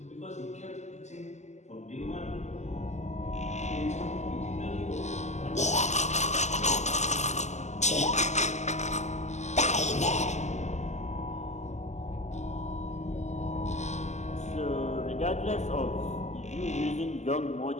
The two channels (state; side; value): late; right; 0.33 ms